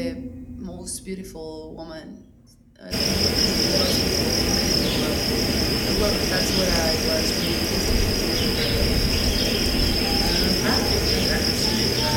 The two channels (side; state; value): both; identical; correlation 1.00